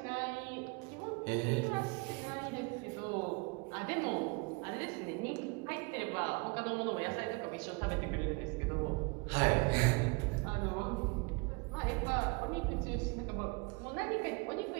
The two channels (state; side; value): quieter; left; 29.2 dB